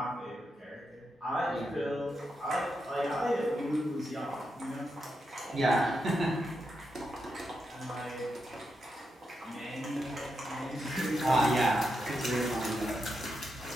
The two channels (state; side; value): normal; both; correlation 0.85